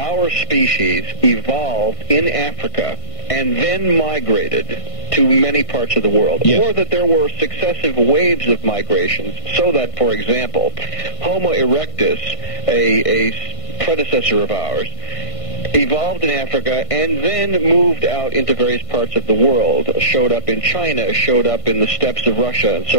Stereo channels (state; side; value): late; right; 1.5 ms